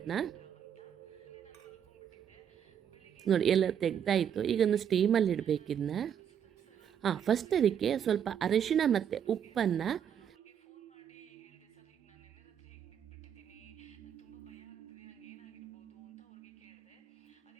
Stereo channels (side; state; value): left; quieter; 8.7 dB